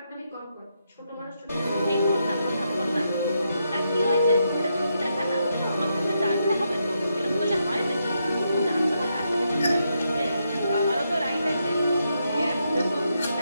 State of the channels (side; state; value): both; inverted; correlation -0.81